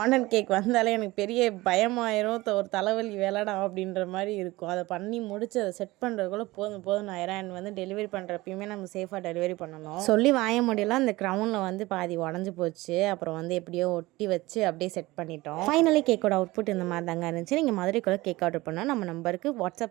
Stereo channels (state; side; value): quieter; left; 19.9 dB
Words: கேக் வந்தாலே எனக்கு பெரிய பயமாயிரும். ஒரு தலைவலி வேலைடா அப்படின்ற மாதிரி இருக்கும். அதை பண்ணி முடிச்சு அதை செட் பண்ணுறதுக்குள்ள போதும் போதும் ஆயிரம். அண்ட் வந்து டெலிவரி பண்ணுறப்பயுமே நம்ம சேஃபாக டெலிவரி பண்ணணும். சொல்லி வாய முடியல. அந்த க்ரௌனில் வந்து பாதி உடஞ்சி போச்சு. அப்புறம் வந்து எப்படியோ ஒட்டி வச்சு அப்படியே செட் பண்ணிட்டோம். ஃபைனலி கேக்கோட அவுட்புட் இந்த மாதிரி தாங்க இருந்துச்சு. நீங்கள் மதுரைக்குள்ள கேக் ஆர்டர் பண்ணால் நம்ம நம்பருக்கு